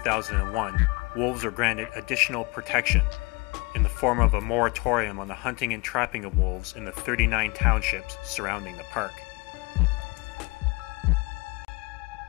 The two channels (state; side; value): quieter; right; 26.7 dB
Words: wolves were granted additional protection in the form of a moratorium on the hunting and trapping of wolves in the 39 townships surrounding the park.